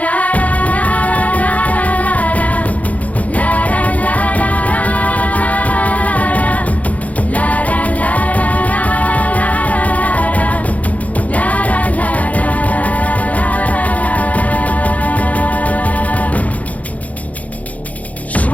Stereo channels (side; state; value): right; late; 0.070 ms